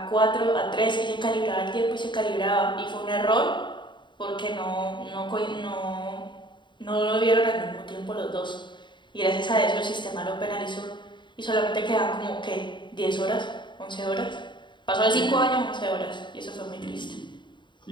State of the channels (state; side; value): late; right; 0.23 ms